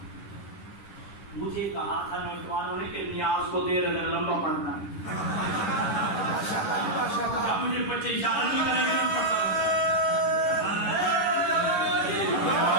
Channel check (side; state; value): right; late; 10 ms